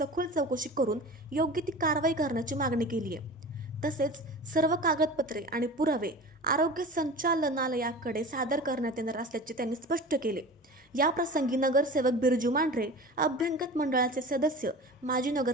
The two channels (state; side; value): normal; both; correlation 0.35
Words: चौकशी करून योग्य ती कारवाई करण्याची मागणी केली आहे। तसेच सर्व कागदपत्रे आणि पुरावे आरोग्य संचालनालयाकडे सादर करण्यात येणार असल्याचे त्यांनी स्पष्ट केले। या प्रसंगी नगरसेवक बिरजू मांढरे, अभ्यंगत मंडळाचे सदस्य माजी